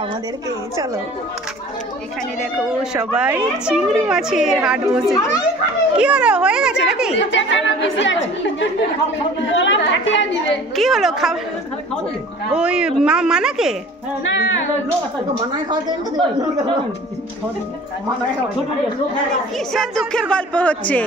আমাদেরকে, চলো। এখানে দেখো সবাই চিংড়ি মাছের হাট বসেছে। কি হলো, হয়ে গেছে নাকি? কি হলো, খাওয়া ওই মানাকে কিসের দুঃখের গল্প হচ্ছে?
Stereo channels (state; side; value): normal; both; correlation 0.46